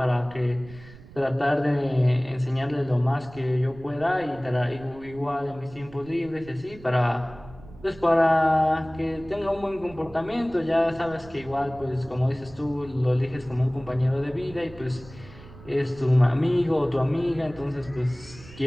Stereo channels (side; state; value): right; noise; rumble, 19 dB below the sound